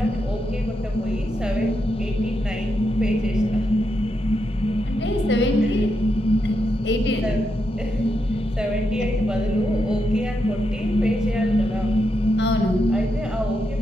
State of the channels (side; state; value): both; normal; correlation 0.83